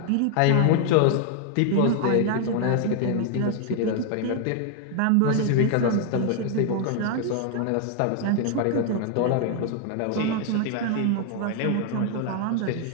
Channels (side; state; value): both; different; correlation 0.00